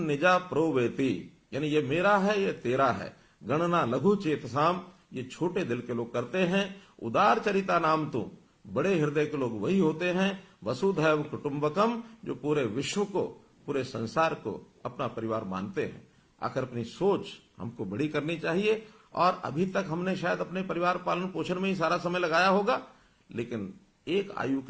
निजा प्रोवेति, यानी ये मेरा है, ये तेरा है। गणना लघु चेतसाम, ये छोटे दिल के लोग करते हैं। उदार चरिता नाम तो, बड़े हृदय के लोग वही होते हैं। वसुधैव कुटुंबकम, जो पूरे विश्व को, पूरे संसार को अपना परिवार मानते हैं। आखिर अपनी सोच हमको बड़ी करनी चाहिए, और अभी तक हमने शायद अपने परिवार पालन पोषण में ही सारा समय लगाया होगा, लेकिन एक आयु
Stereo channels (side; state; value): both; identical; correlation 1.00